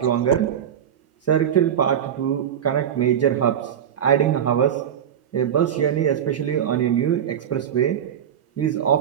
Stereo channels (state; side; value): quieter; left; 9.2 dB